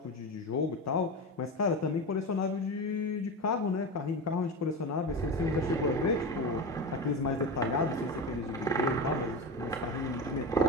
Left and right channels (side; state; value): both; normal; correlation 0.23